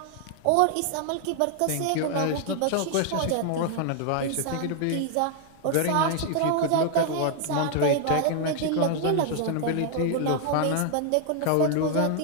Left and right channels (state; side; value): different; both; correlation 0.00